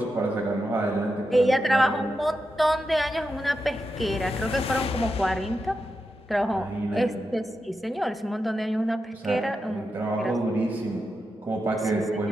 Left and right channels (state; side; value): normal; both; correlation 0.88